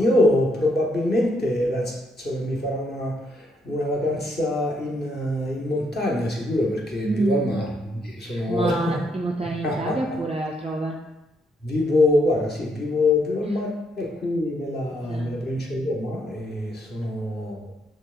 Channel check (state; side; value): normal; both; correlation 0.74